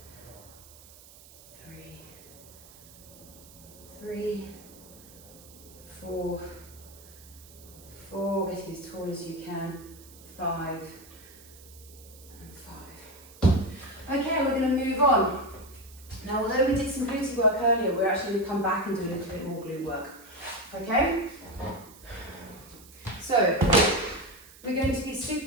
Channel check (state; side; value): noise; right; hiss, 21 dB below the sound